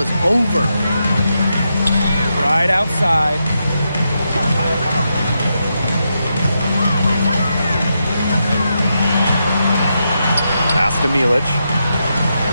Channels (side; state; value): both; inverted; correlation -0.84